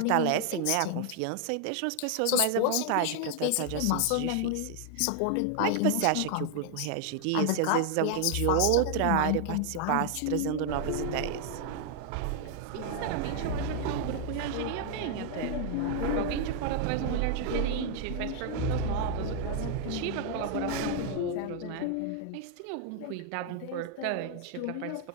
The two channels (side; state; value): both; different; correlation 0.00